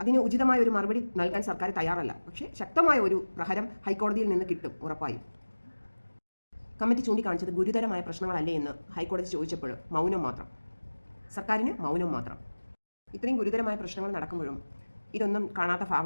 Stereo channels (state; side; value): inverted; both; correlation -1.00